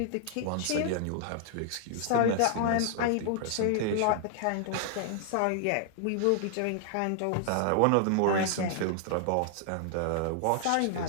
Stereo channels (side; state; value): both; different; correlation 0.00